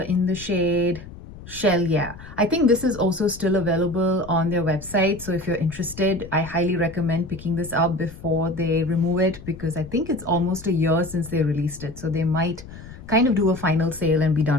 in the shade Shell. Yeah, I think this is also still available on their website. So if you're interested, I highly recommend picking this up before they remove it, because I think it's almost a year since they released it. So they might kind of do a final sale and be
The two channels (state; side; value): noise; left; rumble, 16 dB below the sound